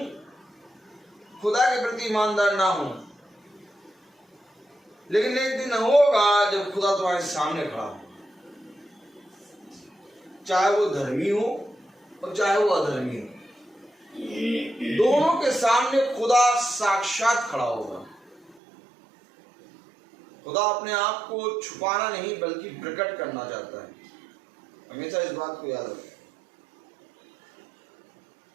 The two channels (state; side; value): drops out; left; at 18.6 s